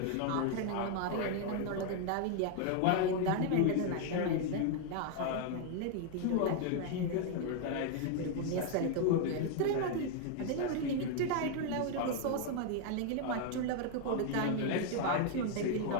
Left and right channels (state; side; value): different; both; correlation 0.00